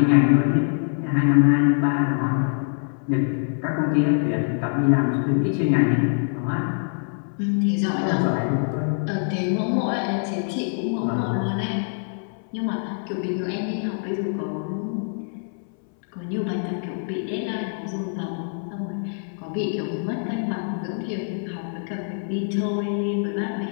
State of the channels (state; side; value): silent; right; 62 dB below the other